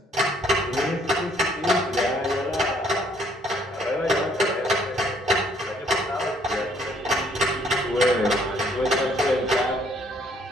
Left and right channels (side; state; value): both; normal; correlation 0.64